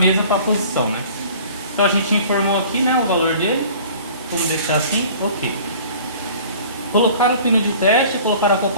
para a posição, né? Então a gente informou aqui, né, o valor dele. Vamos deixar assim, ok. Colocar o pino de teste, colocar a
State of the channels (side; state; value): both; inverted; correlation -0.47